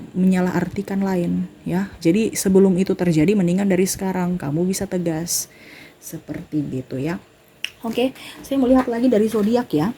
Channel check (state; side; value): identical; both; correlation 1.00